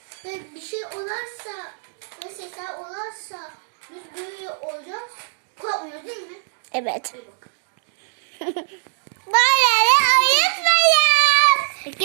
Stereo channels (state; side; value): silent; left; digital silence